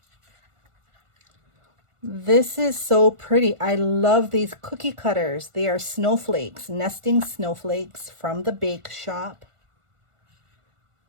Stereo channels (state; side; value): late; left; 1.4 ms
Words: This is so pretty. I love these cookie cutters. They are snowflakes, nesting snowflakes from the bake shop.